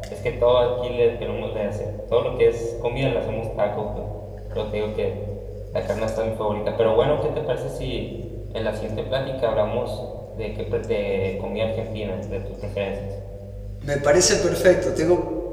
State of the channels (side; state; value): both; identical; correlation 1.00